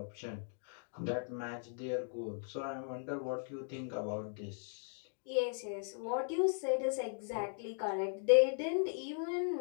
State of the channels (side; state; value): right; silent; digital silence